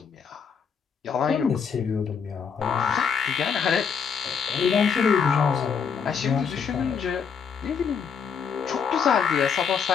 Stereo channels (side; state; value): right; quieter; 6.6 dB